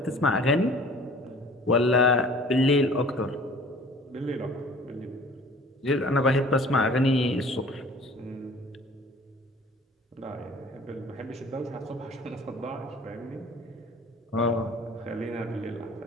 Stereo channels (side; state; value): both; normal; correlation 0.48